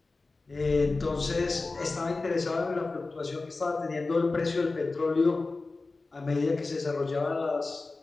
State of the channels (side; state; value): right; quieter; 3.6 dB